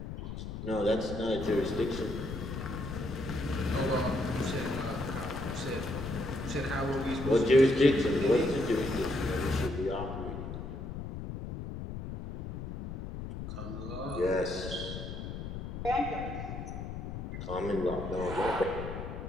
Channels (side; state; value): left; noise; rumble, 7 dB below the sound